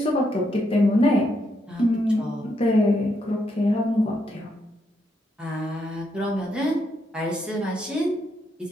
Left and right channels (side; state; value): both; normal; correlation 0.78